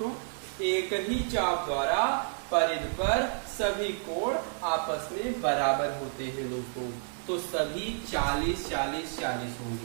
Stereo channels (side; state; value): left; silent; digital silence